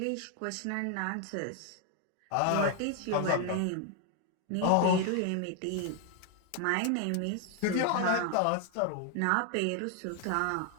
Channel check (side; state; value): both; different; correlation 0.00